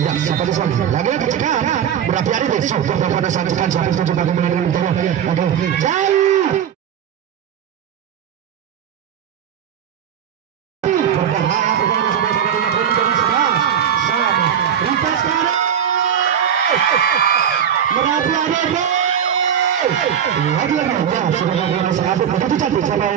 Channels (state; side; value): quieter; left; 8.8 dB